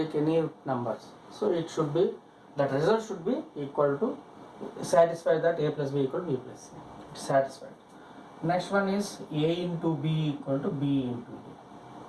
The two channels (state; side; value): identical; both; correlation 1.00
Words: any numbers. So it should be, that result should be equal to, satisfy that A plus B equal to B plus C. It's satisfied. Next one is A into B equal to B into